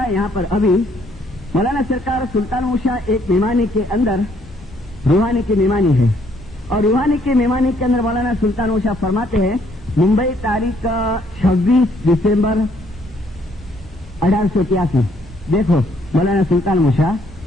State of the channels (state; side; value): normal; both; correlation 0.67